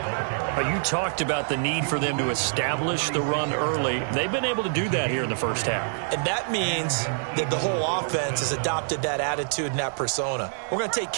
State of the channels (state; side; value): silent; left; digital silence